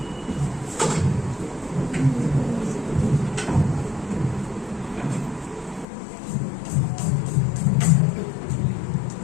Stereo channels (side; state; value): right; drops out; at 5.9 s